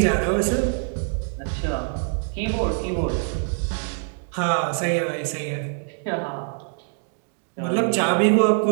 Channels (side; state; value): left; silent; 60 dB below the other